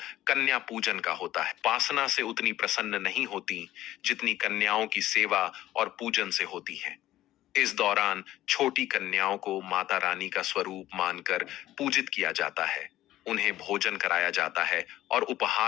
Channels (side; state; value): right; quieter; 14.5 dB